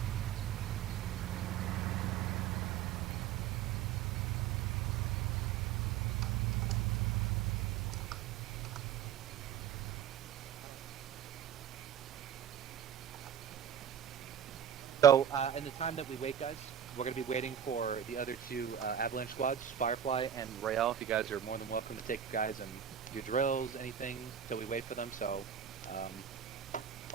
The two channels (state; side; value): quieter; left; 9.1 dB